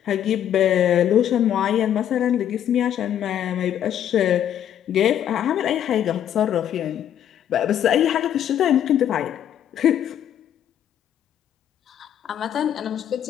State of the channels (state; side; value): quieter; right; 10.2 dB